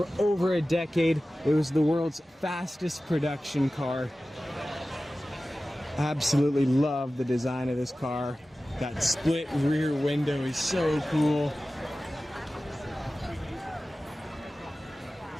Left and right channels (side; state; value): both; normal; correlation 0.96